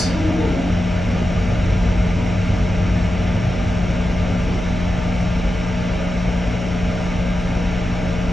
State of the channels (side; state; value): left; noise; hum, 9 dB below the sound